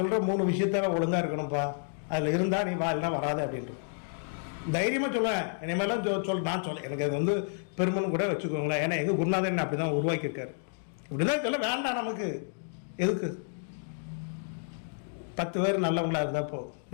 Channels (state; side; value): silent; right; digital silence